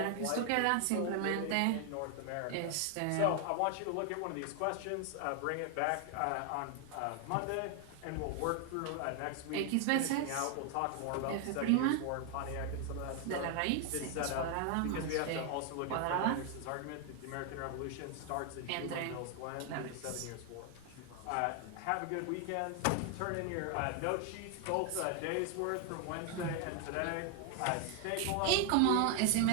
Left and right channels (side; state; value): both; different; correlation 0.00